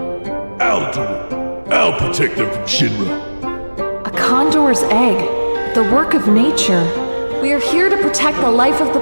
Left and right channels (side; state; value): both; inverted; correlation -1.00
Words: I'll do it. I'll protect them from Shinra. A condor's egg. The work of nature. We are here to protect the life of the